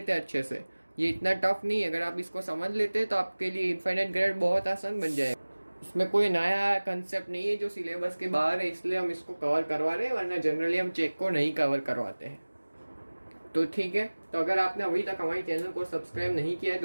हैं अच्छे से, ये इतना टफ नहीं है। अगर आप इसको समझ लेते हैं तो आपके लिए इनफाइनाइट ग्रेड बहुत आसान बन जाएगा। इसमें कोई नया कंसेप्ट नहीं है जो सिलेबस के बाहर है, इसलिए हम इसको कवर करवा रहे हैं, वरना जनरली हम चेक को नहीं कवर करवाते हैं। तो ठीक है, तो अगर आपने अभी तक हमारे चैनल को सब्सक्राइब नहीं किया है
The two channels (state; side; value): inverted; both; correlation -1.00